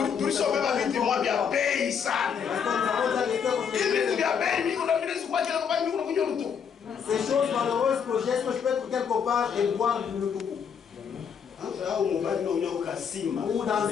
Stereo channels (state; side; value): quieter; right; 7.1 dB